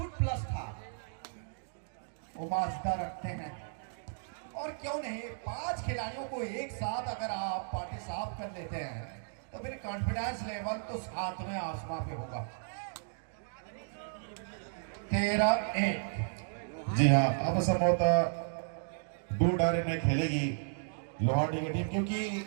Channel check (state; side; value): silent; left; digital silence